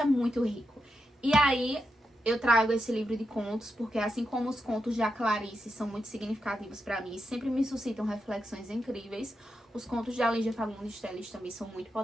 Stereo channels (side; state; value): both; normal; correlation 0.86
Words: é muito rico. E aí, eu trago esse livro de contos, porque assim como os contos de Clarice são muito significativos pra mim, sempre me suscitam reflexões incríveis, os contos de Lígia Fagundes Telles também são muito